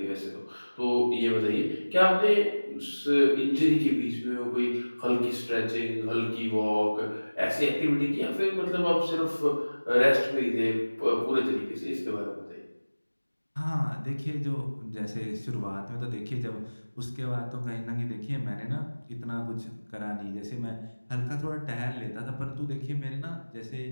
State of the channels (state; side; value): inverted; both; correlation -1.00